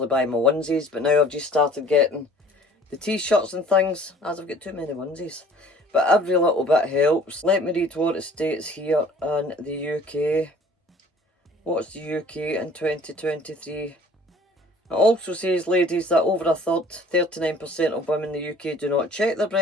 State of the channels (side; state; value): both; normal; correlation 0.51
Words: buy my onesies, but now I've just started getting the t-shirts and things, as I've got too many onesies. But every little bit helps. Let me read what it states here in the UK. What's the UK in 2023? It also says, ladies, that over a third, 39% of women in the UK do not check their